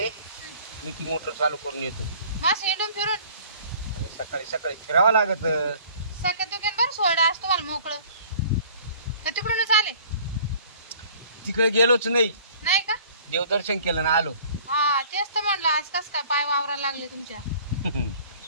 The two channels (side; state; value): both; inverted; correlation -0.51